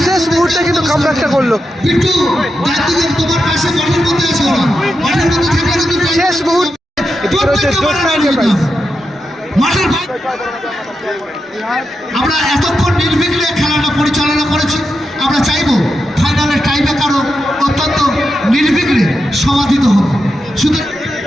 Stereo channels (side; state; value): both; normal; correlation 0.87